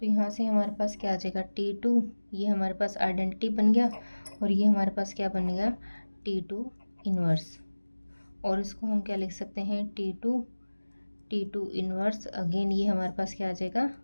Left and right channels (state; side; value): inverted; both; correlation -1.00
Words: यहाँ से हमारे पास क्या आ जाएगा, T2, ये हमारे पास आइडेंटिटी बन गया, और ये हमारे पास क्या बन गया, T2 इन्वर्स। और इसको हम क्या लिख सकते हैं, T2 इन्वर्स, अगेन ये हमारे पास क्या आ जाएगा,